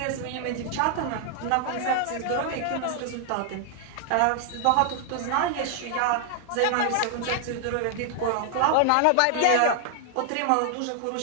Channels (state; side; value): different; both; correlation 0.00